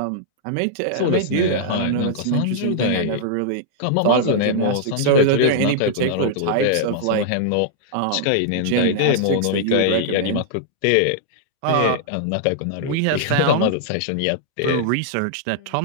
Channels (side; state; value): both; different; correlation -0.01